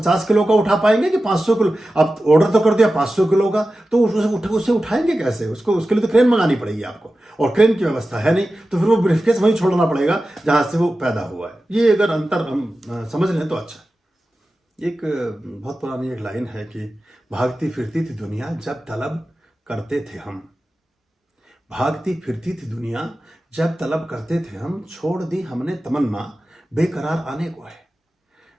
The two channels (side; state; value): both; normal; correlation 0.94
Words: किलो का उठा पाएंगे कि 500 किलो? आप ऑर्डर तो कर दिया 500 किलो का, तो उसे उठाएंगे कैसे? उसके लिए तो क्रेन मंगानी पड़ेगी आपको, और क्रेन की व्यवस्था है नहीं, तो फिर वो ब्रीफकेस वहीं छोड़ना पड़ेगा जहां से वो पैदा हुआ है। ये अगर अंतर हम समझ लें तो अच्छा। एक बहुत पुरानी एक लाइन है कि भागती फिरती थी दुनिया जब तलब करते थे हम, भागती फिरती थी दुनिया जब तलब करते थे हम, छोड़ दी हमने तमन्ना बेकरार आने को है।